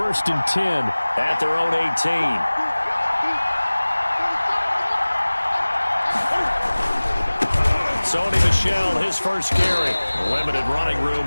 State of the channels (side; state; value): both; inverted; correlation -1.00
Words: and 10 at their own 18. Sony Michel, his first carry. Limited running